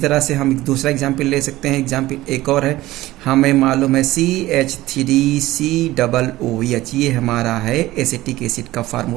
से हम एक दूसरा एग्जाम्पल ले सकते हैं। एग्जाम्पल एक और है, हमें मालूम है CH3COOH, ये हमारा है एसिटिक एसिड का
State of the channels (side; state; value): left; quieter; 17.0 dB